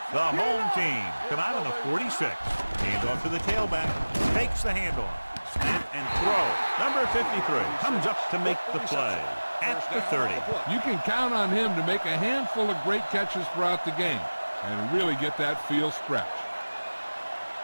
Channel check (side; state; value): both; inverted; correlation -1.00